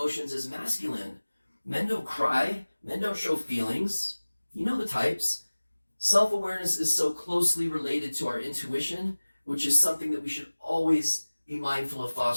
is masculine. Men don't cry, men don't show feelings. You know the types. Self-awareness is so closely related to our intuition, which is something that we should always be mindful of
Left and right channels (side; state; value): both; inverted; correlation -1.00